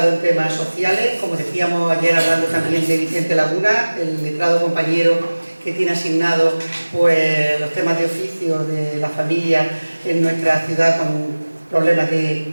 en temas sociales, como decíamos ayer hablando también de Vicente Laguna, el letrado compañero que tiene asignado pues, los temas de oficio de la familia en nuestra ciudad con problemas de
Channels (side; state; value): both; inverted; correlation -1.00